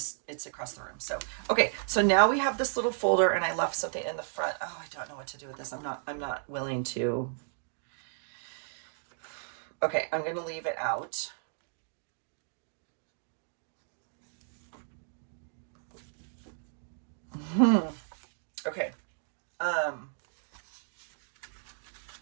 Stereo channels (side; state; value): left; silent; digital silence